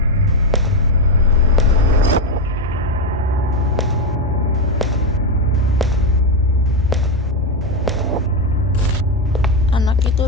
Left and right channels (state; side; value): normal; both; correlation 0.09